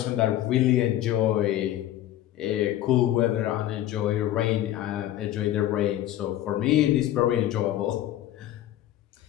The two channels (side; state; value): right; quieter; 13.2 dB